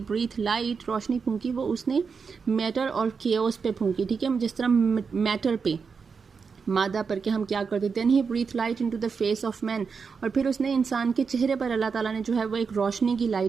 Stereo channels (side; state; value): left; quieter; 5.5 dB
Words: ब्रीथ लाइट, रोशनी फूंकी, वो उसने मैटर और केओस पे फूंकी, ठीक है, जिस तरह मैटर पे, मादा पर के हम क्या करते, then he breath light into the face of man, और फिर उसने इंसान के चेहरे पर अल्लाह ताला ने जो है वो एक रोशनी की